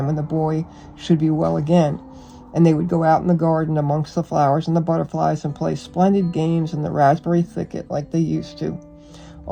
when the boy should be well again, and they would go out in the garden amongst the flowers and the butterflies and play splendid games in the raspberry thicket like they used to.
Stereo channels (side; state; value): both; identical; correlation 1.00